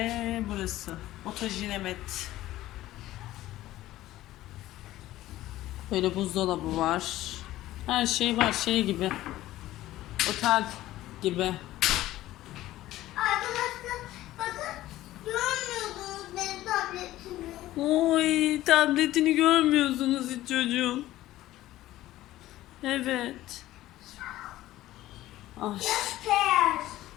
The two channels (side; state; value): right; quieter; 15.3 dB